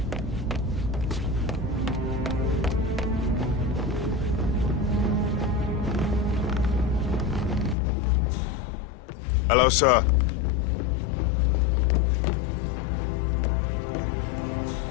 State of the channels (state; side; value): drops out; right; at 7.8 s